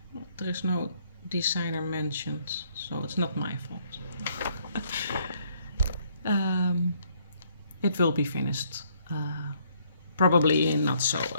There is no designer mentioned, so it's not my fault. It will be finished. Probably not so.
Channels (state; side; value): inverted; both; correlation -0.67